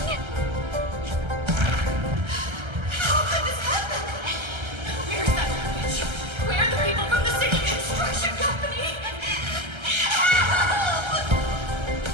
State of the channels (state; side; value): late; left; 1.3 ms